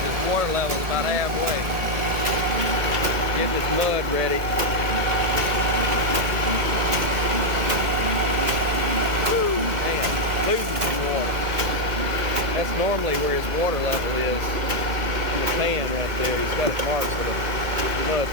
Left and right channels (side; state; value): left; late; 1.7 ms